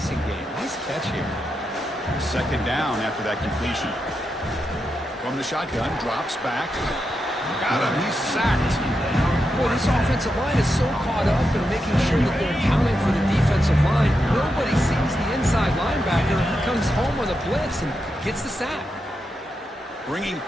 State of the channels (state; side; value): normal; both; correlation 0.86